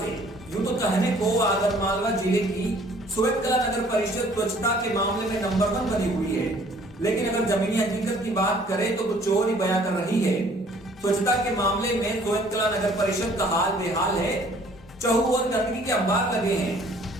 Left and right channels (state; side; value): normal; both; correlation 0.57